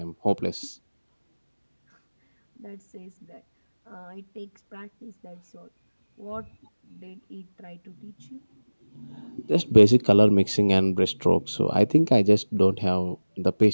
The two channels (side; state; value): both; inverted; correlation -1.00